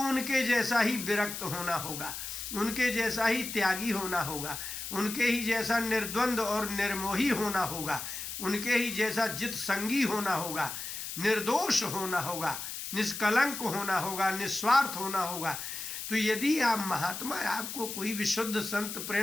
उनके जैसा ही विरक्त होना होगा, उनके जैसा ही त्यागी होना होगा, उनके ही जैसा निर्द्वंद और निर्मोही होना होगा, उनके ही जैसा जित संगी होना होगा, निर्दोष होना होगा, निष्कलंक होना होगा, निस्वार्थ होना होगा। तो यदि आप महात्मा, आपको कोई विशुद्ध संत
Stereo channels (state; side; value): noise; left; hiss, 7 dB below the sound